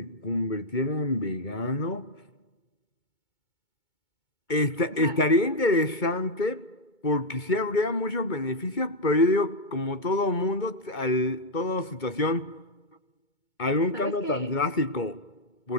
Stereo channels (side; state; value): right; late; 2.2 ms